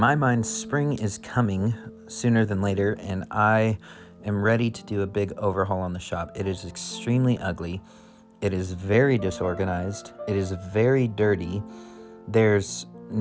mind, spring is coming sooner than later, and I am ready to do a big overhaul on the shop. It is extremely ugly. It is very disorganized. It is very dirty. There's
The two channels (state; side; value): identical; both; correlation 1.00